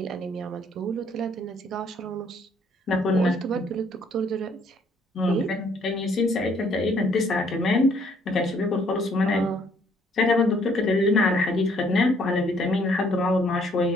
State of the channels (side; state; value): both; normal; correlation 0.64